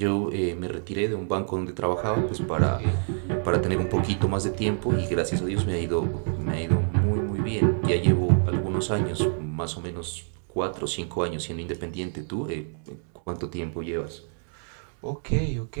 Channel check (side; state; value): left; silent; 60 dB below the other